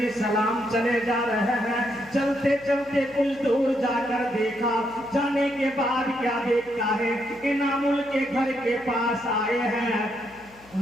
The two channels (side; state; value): left; noise; hum, 26 dB below the sound